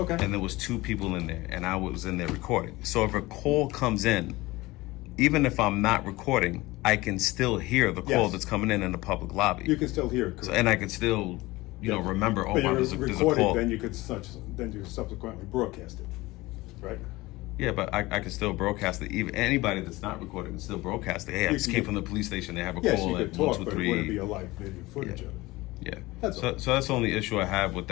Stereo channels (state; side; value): quieter; right; 20.2 dB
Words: and there was 2 people in there, and I was in there recording. So if a call comes in, even if I'm not recording, I can still hear the call Yes. that's coming in the public lobby. You can still hear it. So, and I can still, remember. Oh, But wow, you're there's a recording, call. then you subsequently broadcast it, right? Yeah, but I can still broadcast it. Even anybody that's not recording can still broadcast it. Hey, I just came from the police station. They have a Yes, call you at could 1, talk, 2, but it wouldn't be 3. a live video footage of it. Yeah. That's So, all. so that's the only issue I have with